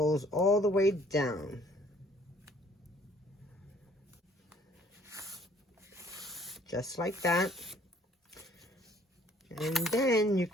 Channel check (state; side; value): normal; both; correlation 0.58